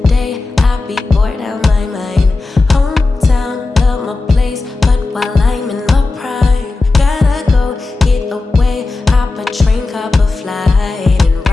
day. I be bored out my mind. Hometown, love my place, but while I'm in my prime, gotta go get away. Hop a train, hop a flight, and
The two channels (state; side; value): quieter; right; 3.5 dB